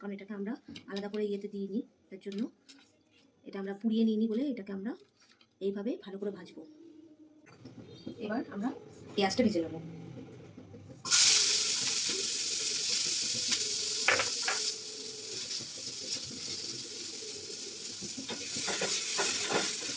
এটাকে আমরা আলাদা করে ইয়েতে দিইনি, তার জন্য এটা আমরা পুড়িয়ে নিইনি বলে এটাকে আমরা এইভাবে ভালো করে ভাজবো। এবার আমরা পেঁয়াজটা ভেজে নেব।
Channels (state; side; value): identical; both; correlation 1.00